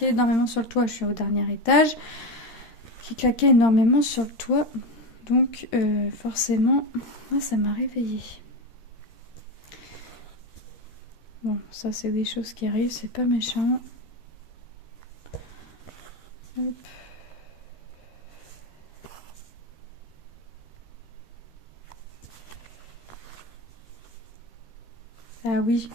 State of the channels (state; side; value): late; right; 13 ms